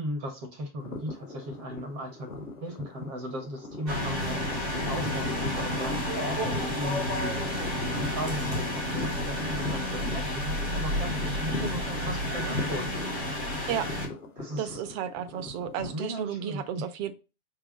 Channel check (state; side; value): late; left; 7.4 ms